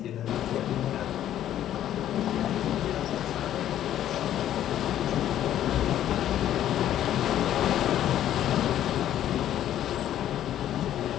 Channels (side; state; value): right; quieter; 11.6 dB